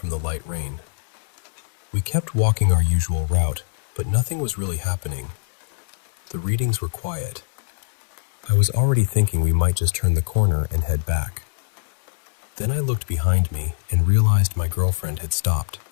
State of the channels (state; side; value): silent; right; 63 dB below the other